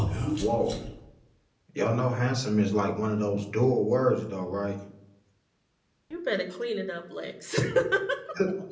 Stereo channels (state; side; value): identical; both; correlation 1.00